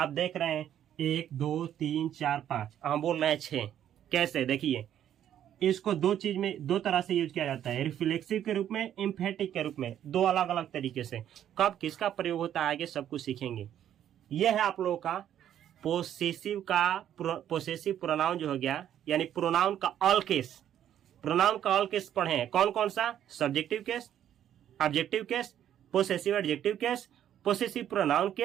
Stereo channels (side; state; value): left; quieter; 10.6 dB